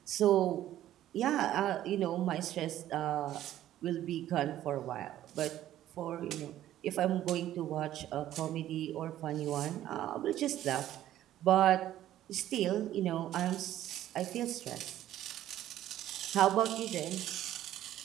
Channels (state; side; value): quieter; left; 12.9 dB